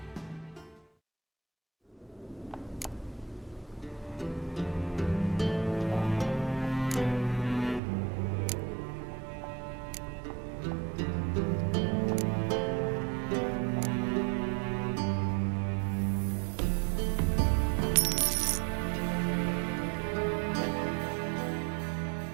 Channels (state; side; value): drops out; left; at 7.8 s